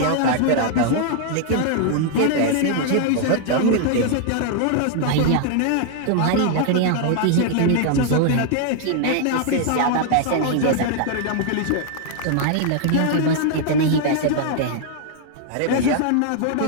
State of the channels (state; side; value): different; both; correlation 0.00